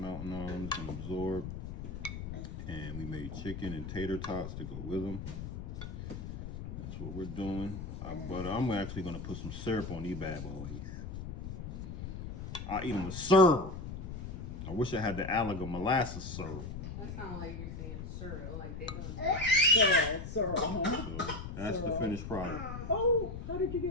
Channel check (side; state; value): left; noise; rumble, 7 dB below the sound